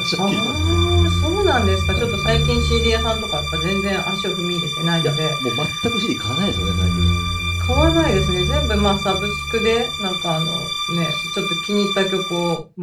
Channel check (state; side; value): identical; both; correlation 1.00